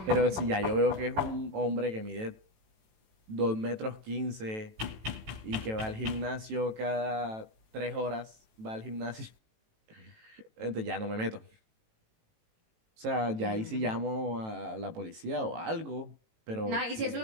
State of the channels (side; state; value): left; late; 18 ms